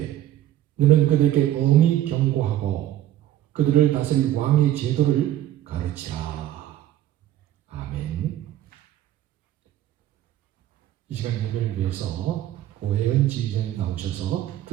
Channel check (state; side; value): quieter; left; 12.7 dB